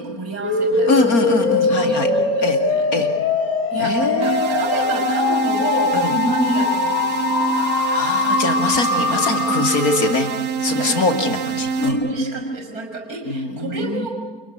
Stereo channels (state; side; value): late; right; 4.3 ms